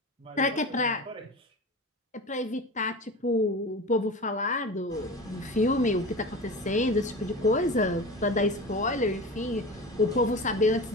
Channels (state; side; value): normal; both; correlation 0.31